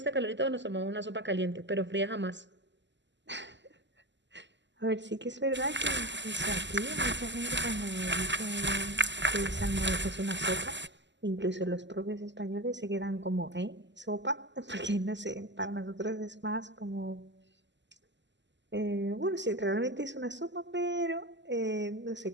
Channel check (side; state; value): left; late; 0.53 ms